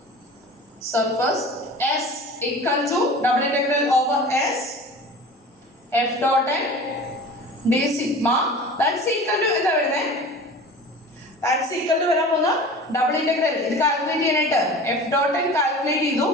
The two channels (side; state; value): both; normal; correlation 0.39